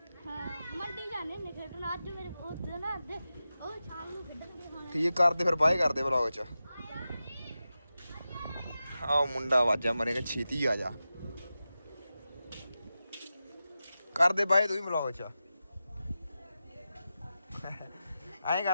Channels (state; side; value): inverted; both; correlation -0.92